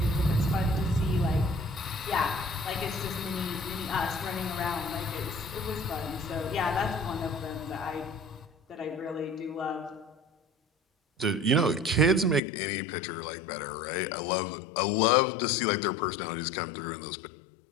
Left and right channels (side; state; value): right; drops out; at 12.4 s